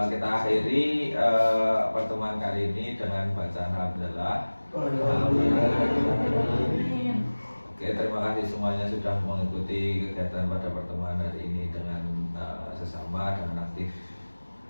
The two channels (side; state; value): both; inverted; correlation -1.00